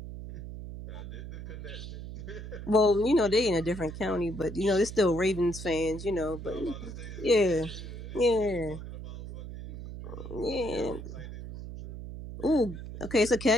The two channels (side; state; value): right; noise; hum, 10 dB below the sound